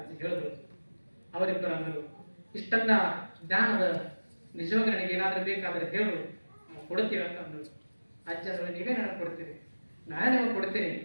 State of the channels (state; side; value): inverted; both; correlation -1.00